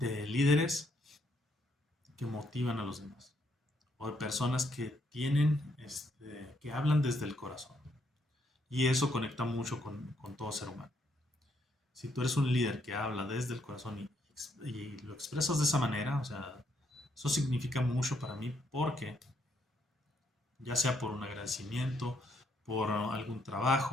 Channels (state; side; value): normal; both; correlation 0.73